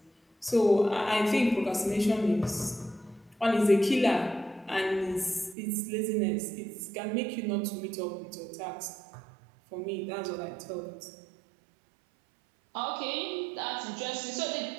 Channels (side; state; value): left; drops out; at 5.6 s